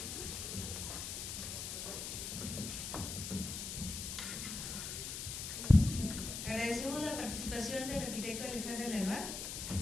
Agradecemos la participación del arquitecto Alexandre Lenoir,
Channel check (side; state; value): left; noise; hiss, 5 dB below the sound